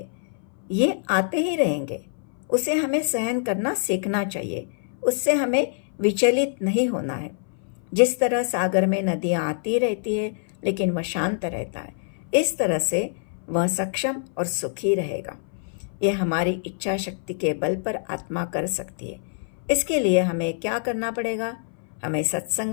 ये आते ही रहेंगे। उसे हमें सहन करना सीखना चाहिए। उससे हमें विचलित नहीं होना है। जिस तरह सागर में नदियाँ आती रहती है, लेकिन वह शांत रहता है, इस तरह से वह सक्षम और सुखी रहेगा। यह हमारी इच्छा शक्ति के बल पर आत्मा कर सकती है। इसके लिए हमें क्या करना पड़ेगा? हमें सत्संग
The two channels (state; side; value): silent; right; 58 dB below the other